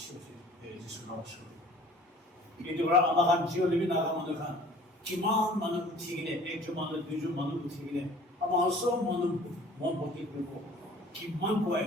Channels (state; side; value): normal; both; correlation 0.49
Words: হৈছে যিছু নমস্কাৰ কিন্তু আমাৰ খান জিঅ'লিবি নাগা মানুহ খান কিমান মানুহ উঠি কিনে একজন মানুহ দুজন মানুহ উঠি কিনে আমাৰ চব মানুহ মন ভৰ্তি কৰিব কিমান কৈ